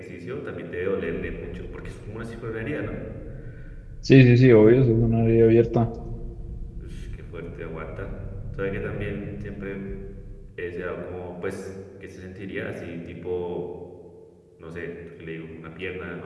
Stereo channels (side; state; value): both; identical; correlation 1.00